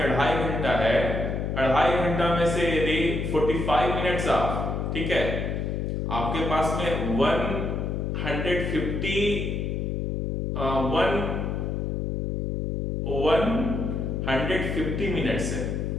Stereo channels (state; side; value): noise; left; hum, 1 dB below the sound